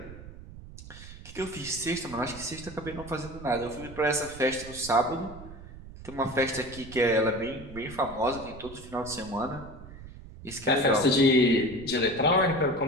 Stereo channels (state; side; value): noise; right; rumble, 15 dB below the sound